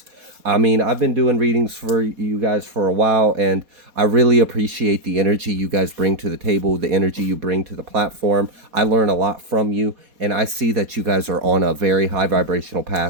I mean, I've been doing readings for you guys for a while, and I really appreciate the energy you guys bring to the table, the energy you bring to the platform. I learn a lot from you, and I see that you guys are on a very high vibrational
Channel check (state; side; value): late; left; 4.2 ms